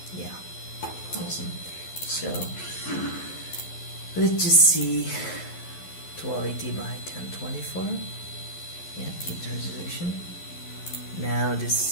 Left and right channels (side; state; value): right; late; 11 ms